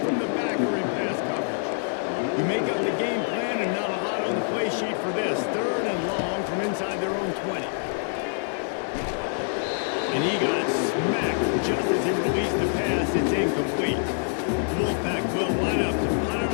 from the backer in pass coverage. You make up the game plan and not a lot on the play sheet for this. 3rd and long from inside their own 20. And he got smacked just as he released the pass. It's incomplete. The Wolfpack will line up to punt it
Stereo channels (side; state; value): right; silent; digital silence